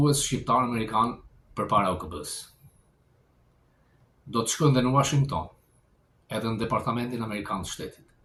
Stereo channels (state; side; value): identical; both; correlation 1.00